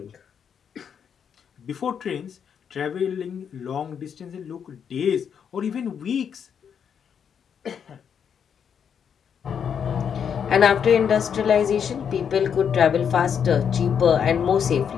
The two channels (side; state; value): right; quieter; 7.6 dB